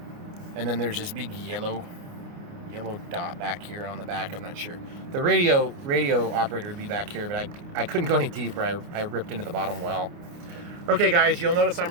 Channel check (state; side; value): late; left; 29 ms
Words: And then there's this big yellow dot back here on the back. I'm not sure. The radio operator would be back here, but I couldn't go any deeper. I ripped into the bottom well. Okay, guys, you'll notice